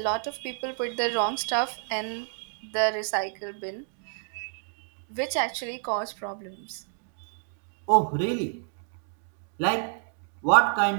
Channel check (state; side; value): silent; left; 59 dB below the other